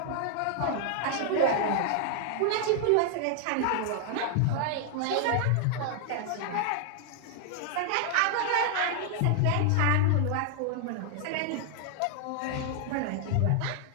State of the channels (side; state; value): both; different; correlation 0.00